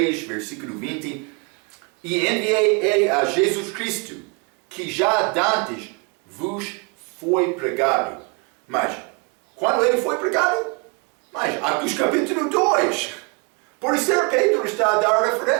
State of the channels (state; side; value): quieter; left; 31.3 dB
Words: versículo 20. E enviei ele a Jesus Cristo, que já dantes vos foi pregado. Mas, quando ele foi pregado? Mas, Atos capítulo 2. Por isso, Pedro está a dar